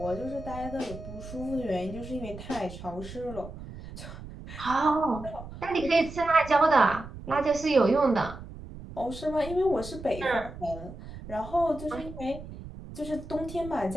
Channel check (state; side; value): noise; right; rumble, 13 dB below the sound